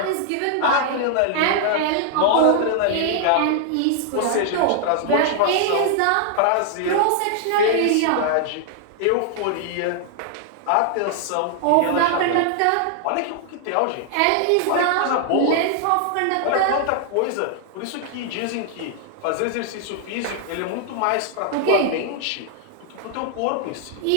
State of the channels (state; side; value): different; both; correlation 0.00